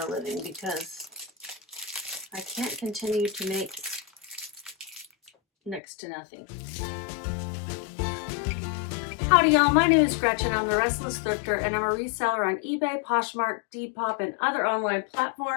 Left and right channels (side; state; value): right; drops out; at 5.8 s